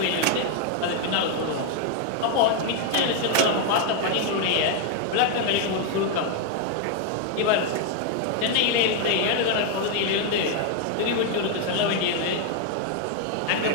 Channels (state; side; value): different; both; correlation 0.00